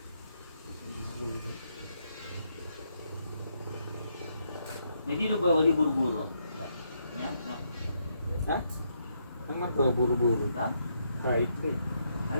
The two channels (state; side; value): inverted; both; correlation -0.77